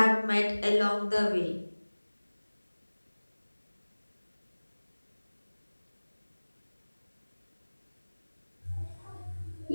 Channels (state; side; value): inverted; both; correlation -1.00